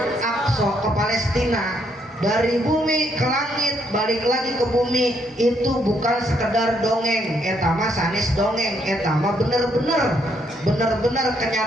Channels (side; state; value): both; normal; correlation 0.72